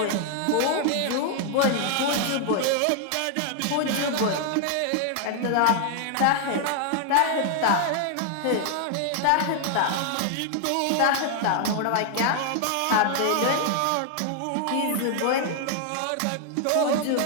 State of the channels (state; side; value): different; both; correlation 0.00